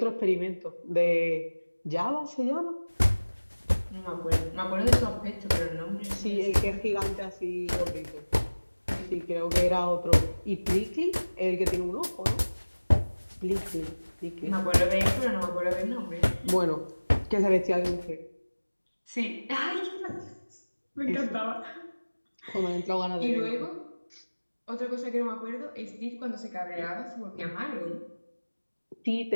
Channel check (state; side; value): inverted; both; correlation -1.00